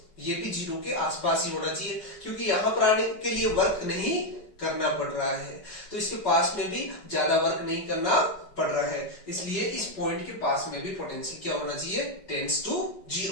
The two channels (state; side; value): late; right; 5.3 ms